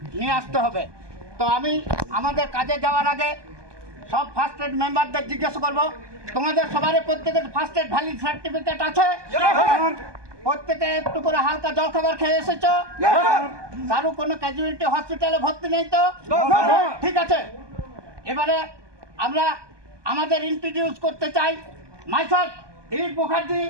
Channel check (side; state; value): left; late; 1.2 ms